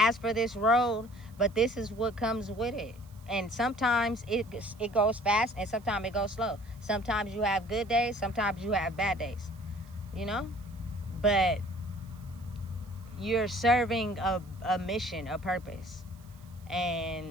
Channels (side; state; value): right; noise; hiss, 28 dB below the sound